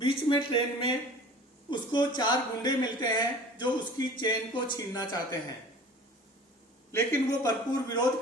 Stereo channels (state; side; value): normal; both; correlation 0.43